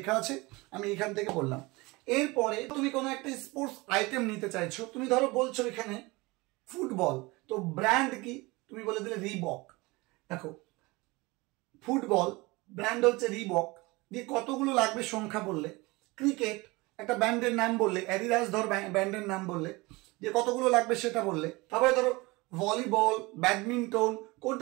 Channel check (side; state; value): left; quieter; 23.4 dB